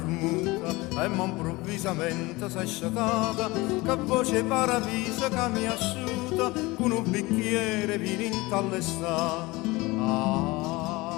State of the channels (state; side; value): quieter; right; 22.0 dB